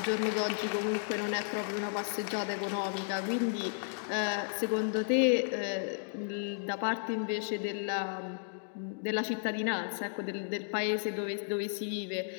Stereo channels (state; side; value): silent; right; digital silence